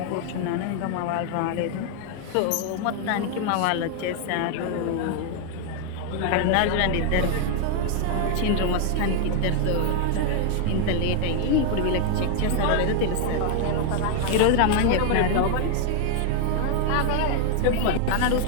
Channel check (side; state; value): both; different; correlation 0.00